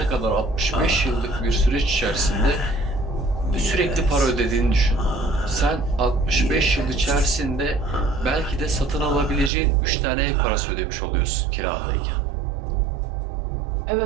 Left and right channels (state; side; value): drops out; left; at 9.5 s